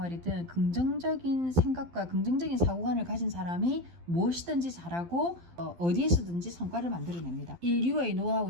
긍정적인 생각과 긍정적인 사고관을 가진 사람이 무엇이든지 잘하고 어디에서든지 성과를 만들어냅니다. 인류의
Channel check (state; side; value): late; left; 12 ms